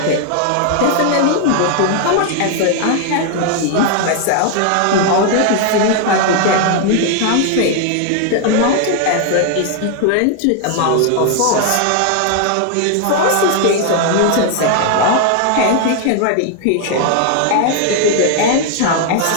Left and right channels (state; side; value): different; both; correlation 0.00